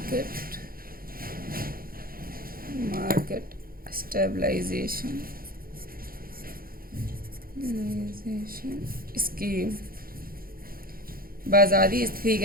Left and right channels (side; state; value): left; late; 0.42 ms